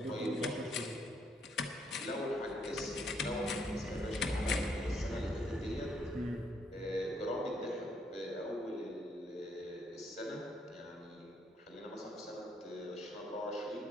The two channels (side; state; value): both; normal; correlation 0.71